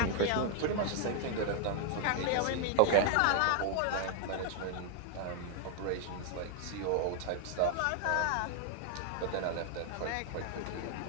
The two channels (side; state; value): both; different; correlation 0.00